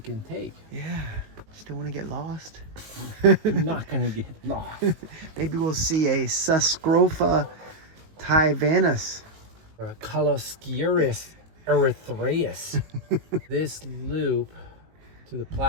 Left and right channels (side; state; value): left; late; 19 ms